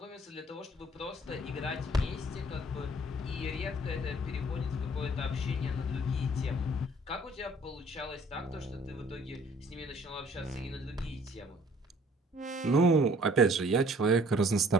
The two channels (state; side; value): normal; both; correlation 0.56